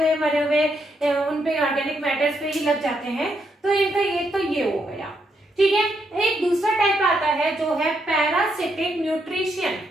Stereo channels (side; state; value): both; normal; correlation 0.78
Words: मरे हुए उनपे ऑर्गेनिक मैटर्स पे ही लग जाते हैं, तो इनका ये तो ये हो गया। ठीक है, एक दूसरा टाइप आता है जो है पैरासिटिक न्यूट्रिशन।